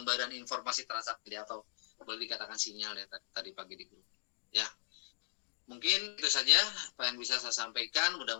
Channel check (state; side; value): silent; right; digital silence